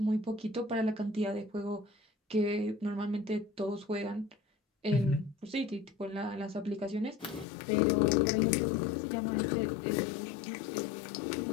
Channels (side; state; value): right; drops out; at 7.5 s